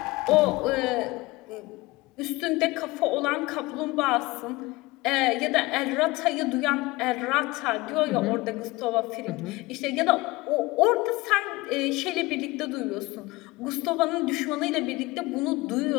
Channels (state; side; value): quieter; right; 21.5 dB